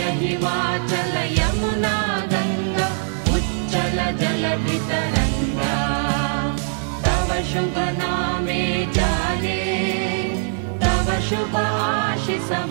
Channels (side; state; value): left; silent; 65 dB below the other